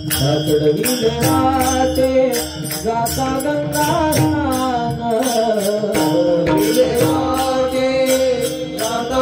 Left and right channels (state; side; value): identical; both; correlation 1.00